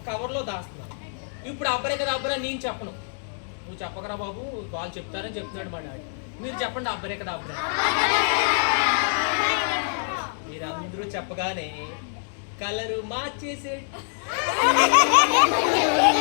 కవర్లో దాస్తున్నాను. ఇప్పుడు అబ్బరే కదా అబ్బరా నేను చెప్పను, నువ్వు చెప్పకరా బాబు, వాళ్ళు చెప్తారని చెప్తున్నాడు మా డాడీ. మీరు చెప్పండి అబ్బరే కదా అబ్బరా. మీరందరూ చెప్పగానే కలరు మార్చేసే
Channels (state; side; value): silent; right; digital silence